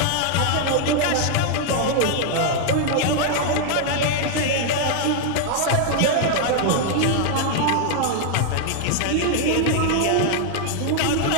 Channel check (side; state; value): both; different; correlation 0.00